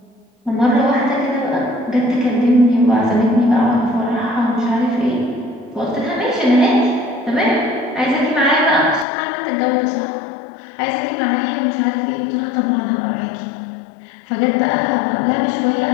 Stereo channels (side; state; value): right; drops out; at 9.1 s